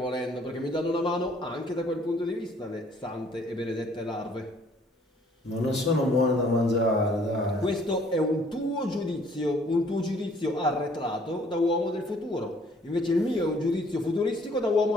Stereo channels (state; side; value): normal; both; correlation 0.60